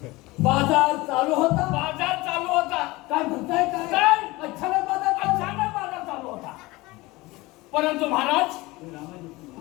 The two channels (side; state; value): right; quieter; 21.2 dB